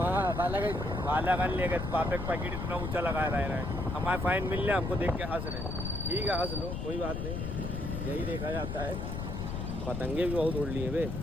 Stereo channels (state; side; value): noise; left; rumble, 4 dB below the sound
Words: बालागंज ले गए। पापे का पैकेट इतना ऊंचा लगा रहा है। हमारे फाइन मिल रहा, हमको देख के हंस रहे। ठीक है हंस लो, कोई बात नहीं, यही देखा जाता है। पतंगे भी बहुत उड़ लिए वे।